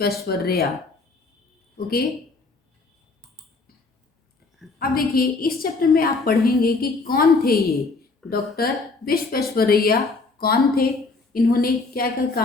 ओके, अब देखिए इस चैप्टर में आप पढ़ेंगे कि कौन थे ये डॉक्टर विश्वेश्वरैया, कौन थे, इन्होंने क्या क्या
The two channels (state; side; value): quieter; right; 3.8 dB